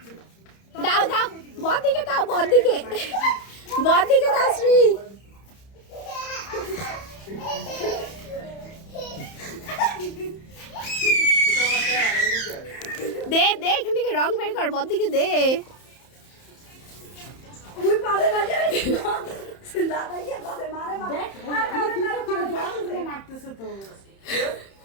दाओ दाओ बहुत दिखे दाओ बहुत दिखे दाओ श्री दे दे এখান থেকে রং বের কর বদ দিকে দে ওই পারে না যায় দাদা কি পারে মারে মারে আমি তুই তো জল মারতেছ তো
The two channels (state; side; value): late; right; 31 ms